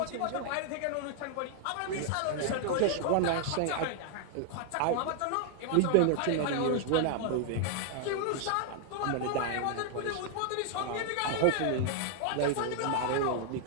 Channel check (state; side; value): different; both; correlation 0.00